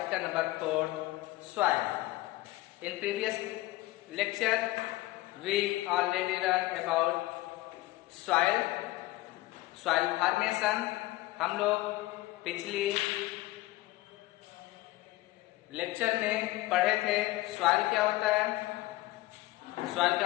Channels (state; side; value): quieter; right; 18.2 dB